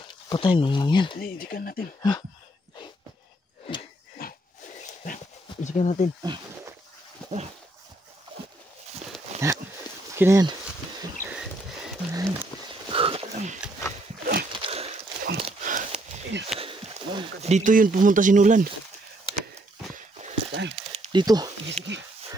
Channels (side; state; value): both; normal; correlation 0.71